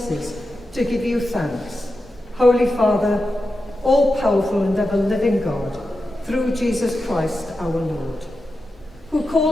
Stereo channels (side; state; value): both; normal; correlation 0.90